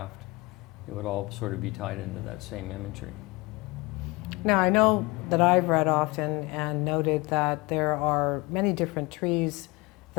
It would all sort of be tied into that same imagery. Now, I know that I've read often and noted that there are many different trees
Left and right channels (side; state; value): right; quieter; 24.2 dB